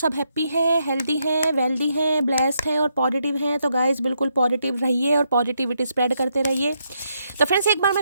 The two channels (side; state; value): both; inverted; correlation -0.78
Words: हैप्पी हैं, हेल्दी हैं, वेल्दी हैं, ब्लेस्ड हैं और पॉजिटिव हैं। तो गाइस बिल्कुल पॉजिटिव रहिए और पॉजिटिविटी स्प्रेड करते रहिए। तो फ्रेंड्स एक बार मैं